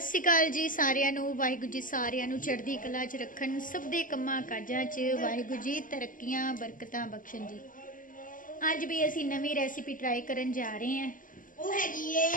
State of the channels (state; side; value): late; right; 0.39 ms